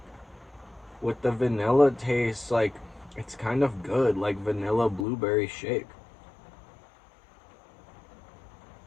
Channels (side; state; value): right; drops out; at 5.1 s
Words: With the vanilla taste, like it's kind of good, like vanilla blueberry shake.